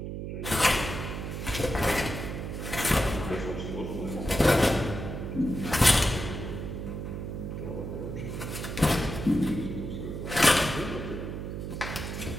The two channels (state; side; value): noise; right; hum, 5 dB below the sound